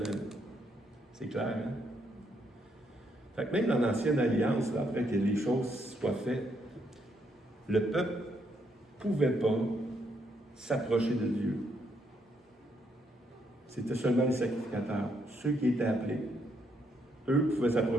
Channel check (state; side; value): normal; both; correlation 0.75